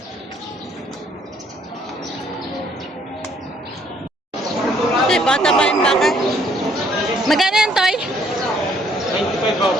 Ito, bata pa yung baka. Magkano yan, Toy?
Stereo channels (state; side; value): normal; both; correlation 0.65